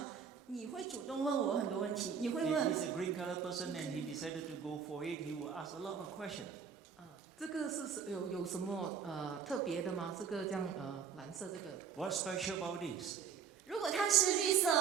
你会主动问我很多问题，你会 If 问 he's a green color person and he decided to go for it, he will ask a lot of questions. 这个是有什么特别的吗？这个这样蓝色这个 What's special about this? 如果他是绿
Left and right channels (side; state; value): left; quieter; 7.0 dB